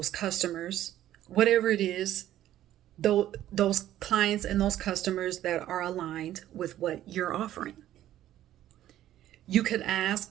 customers, whatever it is, those clients and those customers that are aligned with what you're offering. You could ask,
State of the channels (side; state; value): left; quieter; 12.8 dB